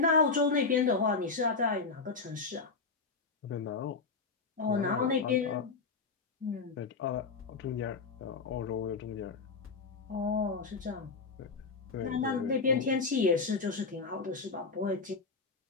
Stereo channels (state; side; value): quieter; right; 4.5 dB